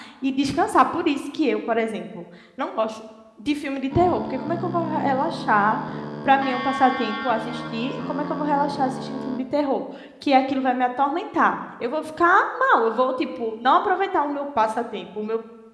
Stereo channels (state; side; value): identical; both; correlation 1.00